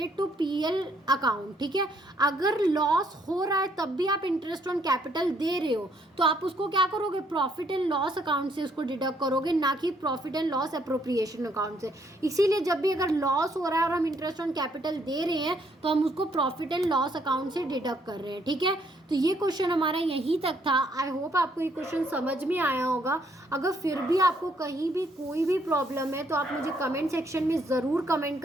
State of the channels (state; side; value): normal; both; correlation 0.69